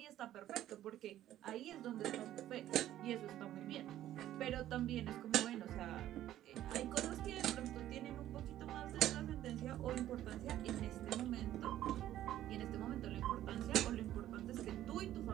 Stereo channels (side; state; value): left; quieter; 12.9 dB